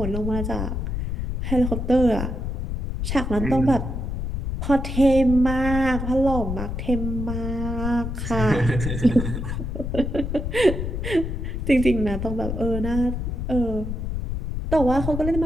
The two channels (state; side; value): noise; left; rumble, 3 dB below the sound